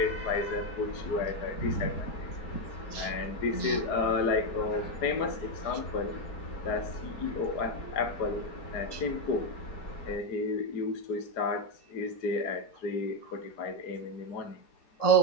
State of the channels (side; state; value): right; late; 4.8 ms